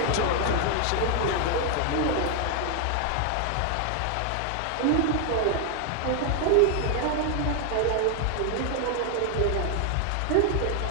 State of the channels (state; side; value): different; both; correlation 0.00